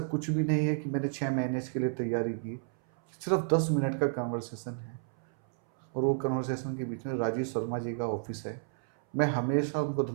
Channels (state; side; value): silent; left; 57 dB below the other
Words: कुछ भी नहीं है कि मैंने 6 महीने इसके लिए तैयारी की। सिर्फ 10 मिनट का कन्वर्सेशन है, और वो कन्वर्सेशन के बीच में राजीव शर्मा जी का ऑफिस है। मैं हमेशा उनको